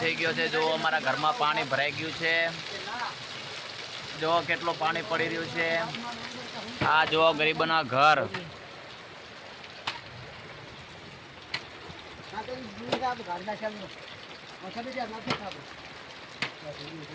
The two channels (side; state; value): both; identical; correlation 1.00